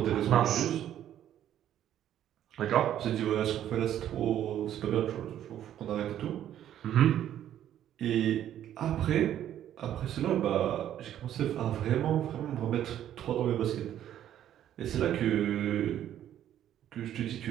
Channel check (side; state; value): left; quieter; 11.2 dB